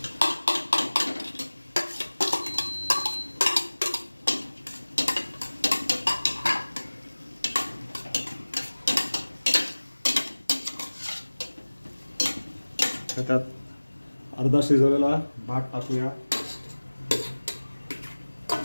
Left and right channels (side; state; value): both; inverted; correlation -1.00